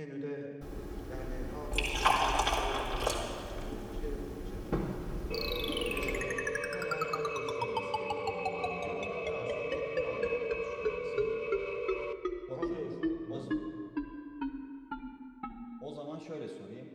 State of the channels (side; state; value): both; identical; correlation 1.00